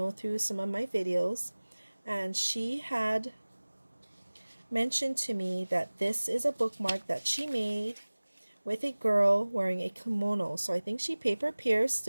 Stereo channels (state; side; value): inverted; both; correlation -1.00